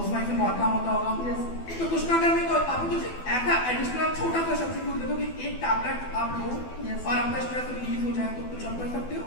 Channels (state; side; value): late; right; 12 ms